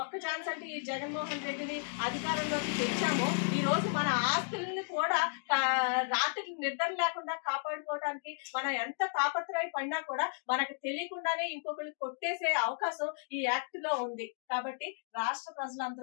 ఒక్క ఛాన్స్ అంటే ఈ జగన్మోహన్ రెడ్డిని అధికారంలోకి తెచ్చామో ఈ రోజు మన ఆస్తుల్ని కూడా రాత్రి నిద్ర లేకుండా కాపాడుకోవడానికి మనం ఎంత తాపత్రయపడినా కూడా మనకు తెలియకుండానే ఇంకొకరికి కొట్టేసే అవకాశం ఈ యాక్ట్ లో ఉంది. కాబట్టి రాష్ట్ర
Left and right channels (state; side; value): silent; right; digital silence